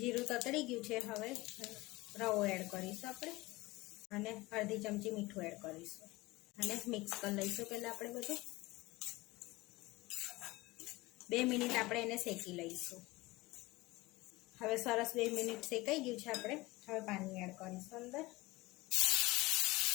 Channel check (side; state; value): right; quieter; 20.8 dB